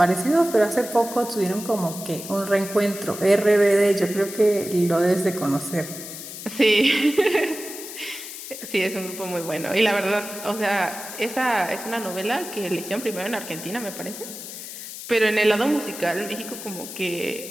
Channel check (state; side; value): noise; left; hiss, 11 dB below the sound